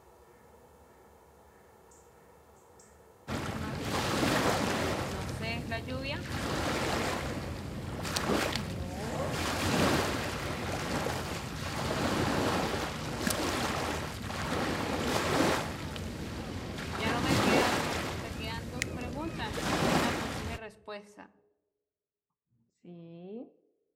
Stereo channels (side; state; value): both; identical; correlation 1.00